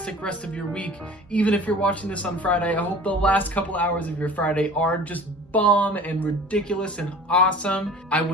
rest of your week. Even if you're watching this on Friday, I hope the last couple hours of your Friday are just bomb and ridiculous and awesome. I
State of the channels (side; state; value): both; normal; correlation 0.43